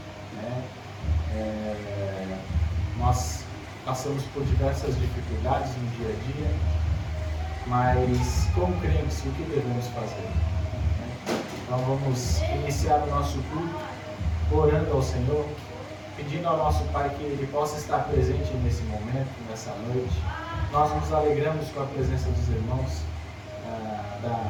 Né? Nós passamos por diversas dificuldades no dia a dia, mas como crentes, o que devemos fazer? Né? Então vamos iniciar o nosso culto orando ao Senhor, pedindo ao nosso Pai que Ele possa estar presente nesse momento, nessa noite. Nós nos alegramos com a presença dos irmãos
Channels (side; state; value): both; identical; correlation 1.00